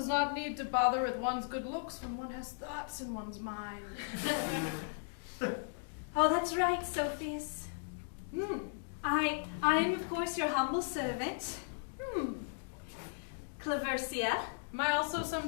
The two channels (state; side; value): silent; right; digital silence